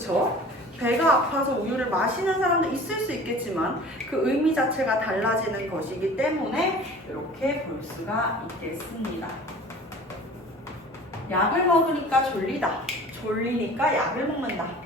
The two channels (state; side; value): normal; both; correlation 0.43